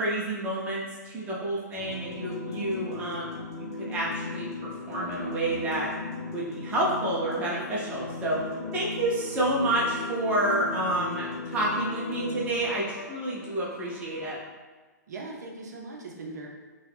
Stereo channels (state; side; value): normal; both; correlation -0.12